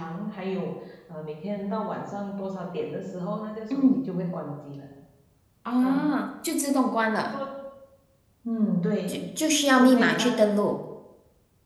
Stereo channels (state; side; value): identical; both; correlation 1.00